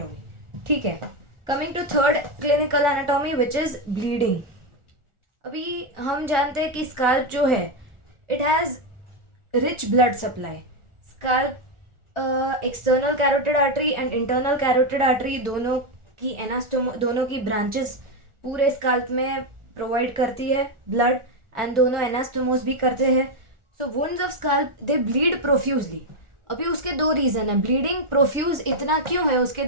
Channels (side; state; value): left; late; 1.4 ms